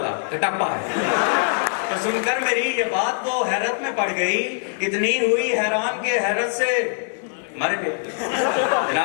कटप्पा है। तो सुनकर मेरी ये बात वो हैरत में पड़ गई, इतनी हुई हैरान के हैरत से मर गए।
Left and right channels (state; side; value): silent; right; digital silence